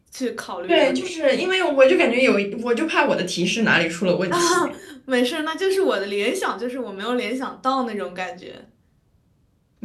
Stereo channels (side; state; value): both; identical; correlation 1.00